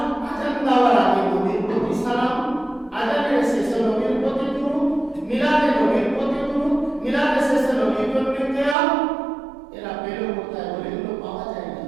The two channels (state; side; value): drops out; left; at 8.8 s